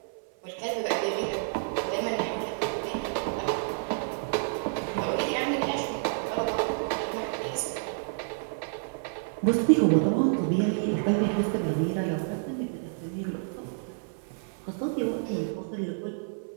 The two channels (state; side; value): silent; left; 58 dB below the other